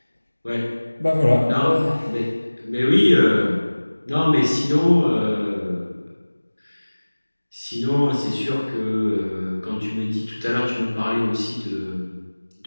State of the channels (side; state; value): both; inverted; correlation -1.00